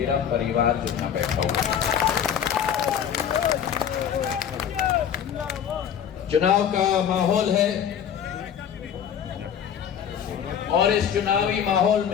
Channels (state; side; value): quieter; right; 8.6 dB